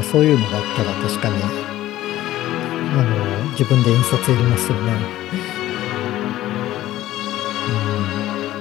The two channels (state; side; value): quieter; right; 14.7 dB